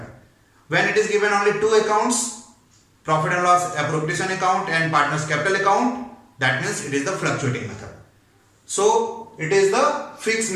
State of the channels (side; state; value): both; identical; correlation 1.00